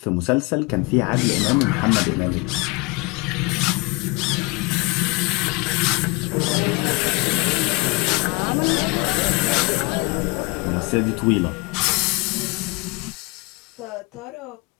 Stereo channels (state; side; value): quieter; right; 26.9 dB